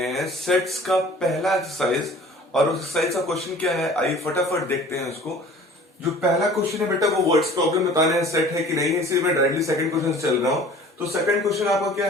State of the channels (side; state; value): both; normal; correlation 0.47